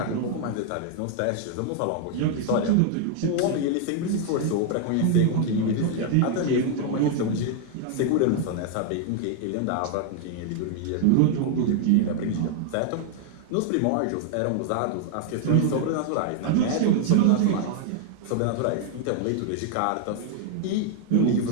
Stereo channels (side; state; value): both; different; correlation 0.00